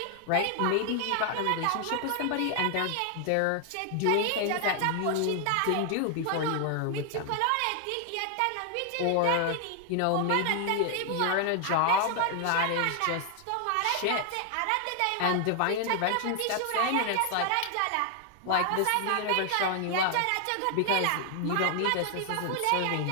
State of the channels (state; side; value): different; both; correlation 0.00